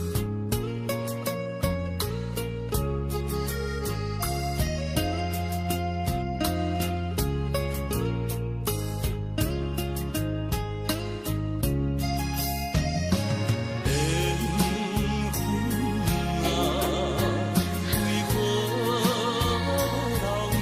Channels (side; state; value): both; identical; correlation 1.00